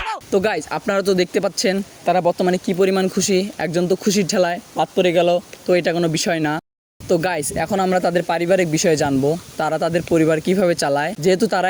তো গাইজ আপনারা তো দেখতে পাচ্ছেন তারা বর্তমানে কি পরিমাণ খুশি। একজন তো খুশির ঠেলায় বাদ পড়ে গেল, তো এটা কোনো বিষয় না। তো গাইজ এখন আমরা তাদের পারিবারিক বিষয়ে জানবো, তারা তাদের পরিবার কিভাবে চালায়। যেহেতু তারা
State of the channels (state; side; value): identical; both; correlation 1.00